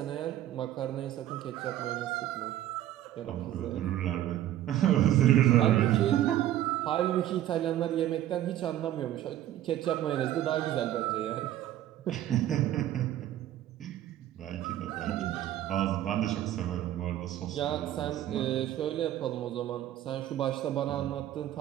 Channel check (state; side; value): quieter; left; 12.7 dB